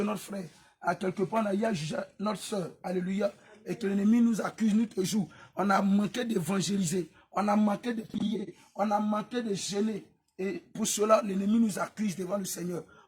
notre frère. À quelque part, on a eu à juger notre soeur. Alléluia. Et que l'ennemi nous accuse nuit et jour. On a manqué d'évangéliser. On a manqué de prier. On a manqué de gêner. Et pour cela, l'ennemi nous accuse devant le Seigneur.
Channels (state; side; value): identical; both; correlation 1.00